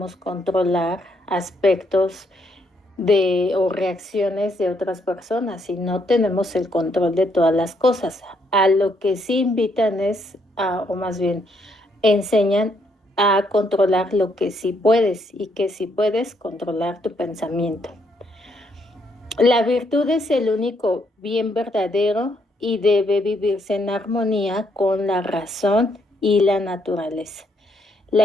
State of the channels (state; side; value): normal; both; correlation 0.73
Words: controlar aspectos o reacciones de otras personas y no tenemos el control de todas las cosas. A lo que sí invitan o más bien enseñan a controlar lo que sí puedes y que sí puedes controlar tu pensamiento. La virtud es el único bien verdadero y debe vivirse en armonía con la razón y la naturaleza.